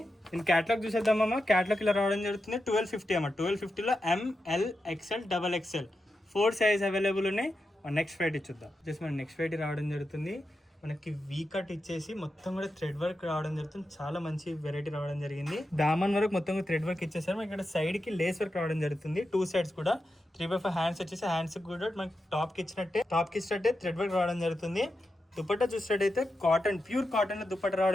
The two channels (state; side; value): normal; both; correlation 0.89